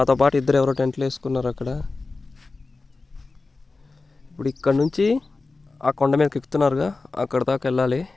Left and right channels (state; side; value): quieter; right; 3.7 dB